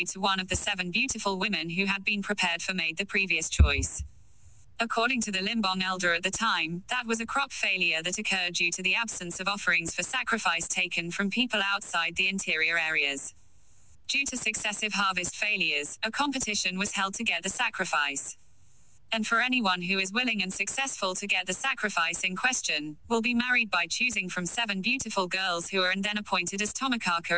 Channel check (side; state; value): both; identical; correlation 1.00